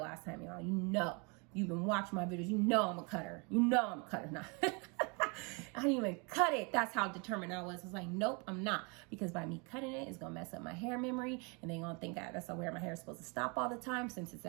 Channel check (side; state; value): left; quieter; 31.9 dB